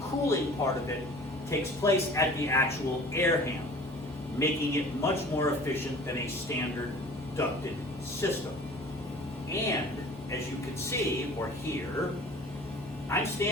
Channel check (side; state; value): both; normal; correlation 0.45